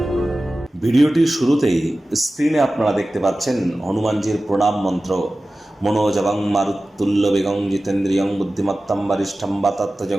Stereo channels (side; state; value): both; normal; correlation 0.96